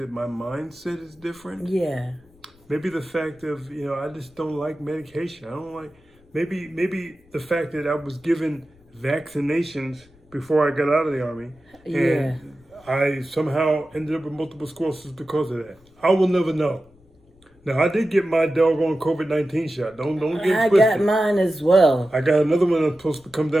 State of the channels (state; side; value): noise; left; rumble, 30 dB below the sound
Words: my mindset is different. Yeah. Maybe the fact of, I just don't like medication. I don't like, maybe the fact that I was given vaccinations before I got out of the Army. Yeah. And I somehow ended up with multiple sclerosis because of that. I will never know. Now, I did get my doggone COVID-19 shot. Don't get it I twisted. got mine as well. I got another one that's supposed to come